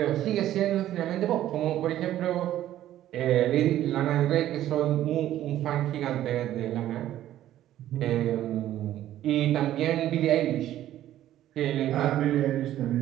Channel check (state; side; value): quieter; left; 12.8 dB